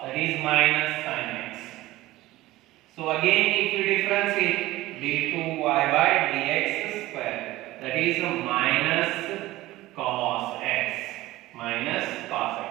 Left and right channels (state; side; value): quieter; left; 17.4 dB